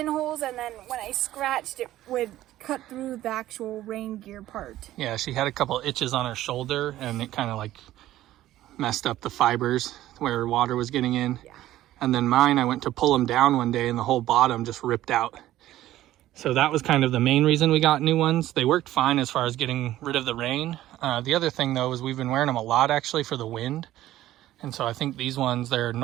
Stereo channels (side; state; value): left; quieter; 14.4 dB